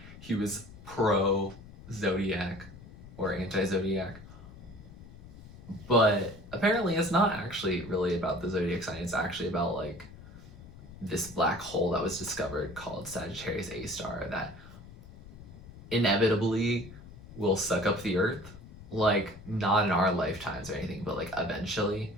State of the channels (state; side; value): noise; left; rumble, 17 dB below the sound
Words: he was pro Zodiac or anti Zodiac. But apparently it's not actually really about the zodiac sign. It's actually about like this black hole that was discovered called Sagittarius A Star that inevitably will suck up the earth. Like, not in our lifetimes or anything, but like eventually.